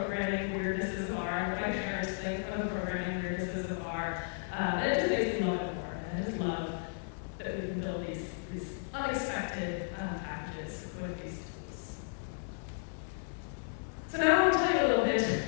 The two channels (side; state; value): right; silent; digital silence